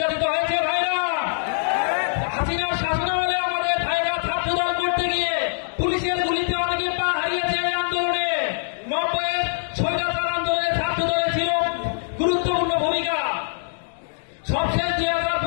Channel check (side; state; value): right; silent; digital silence